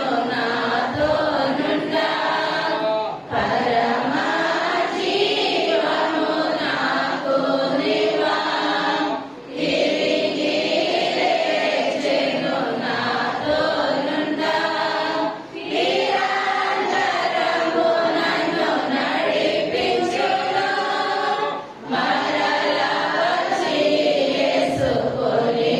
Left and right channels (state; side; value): identical; both; correlation 1.00